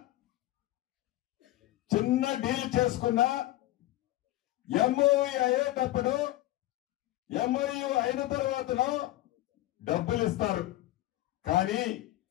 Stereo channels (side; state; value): right; quieter; 15.8 dB